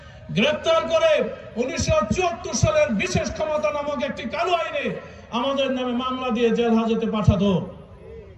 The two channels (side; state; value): both; identical; correlation 1.00